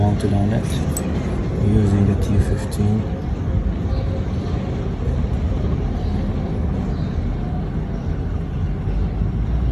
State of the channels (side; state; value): both; identical; correlation 1.00